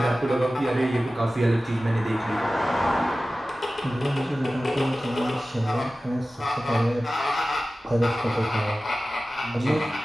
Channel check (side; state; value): both; normal; correlation 0.96